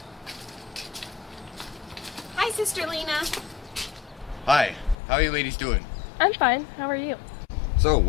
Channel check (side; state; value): right; drops out; at 5.0 s